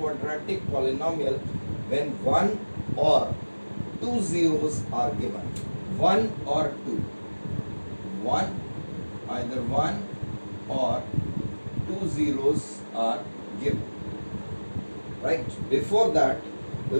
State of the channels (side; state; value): both; inverted; correlation -1.00